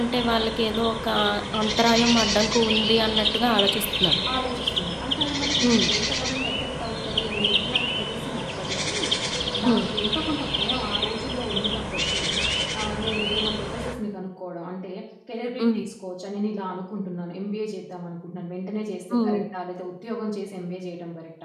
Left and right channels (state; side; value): identical; both; correlation 1.00